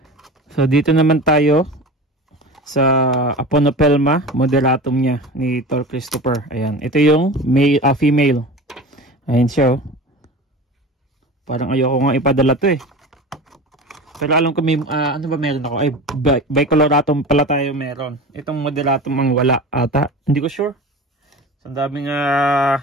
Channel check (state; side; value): normal; both; correlation 0.33